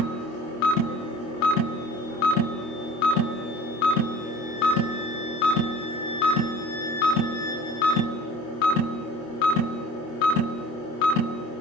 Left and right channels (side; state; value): right; late; 25 ms